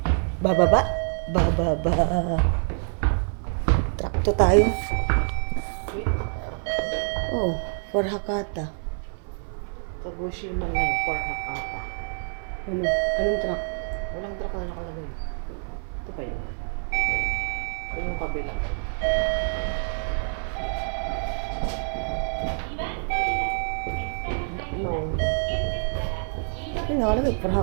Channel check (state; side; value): silent; left; 57 dB below the other